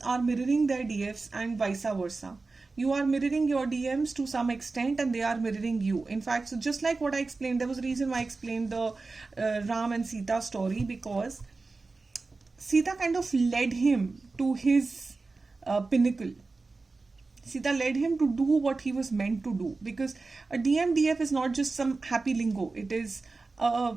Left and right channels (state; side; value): quieter; left; 3.8 dB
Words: are mirroring their DFs and vice versa. You are mirroring your DMs to some extent and they are mirroring you. In fact, so just like what I explained, there was a reason why I explained the Ram and Sita story, because Sita kind of led him to his pinnacle. Sita led him to do what he was meant to do, because a DMDF is not just some happy lingo. It is